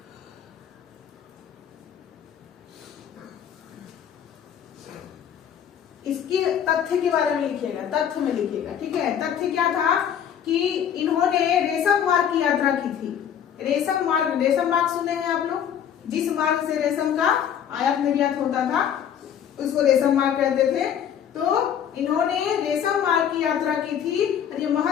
इसके तथ्य के बारे में लिखिएगा, तथ्य में लिखिएगा। ठीक है, तथ्य क्या था कि इन्होंने रेशम मार्ग की यात्रा की थी। रेशम मार्ग सुने हैं आप लोग? जिस मार्ग से रेशम का आयात निर्यात होता था उसको रेशम मार्ग कहते थे। तो इन्होंने रेशम मार्ग की यात्रा की थी और ये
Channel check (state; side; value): quieter; right; 9.0 dB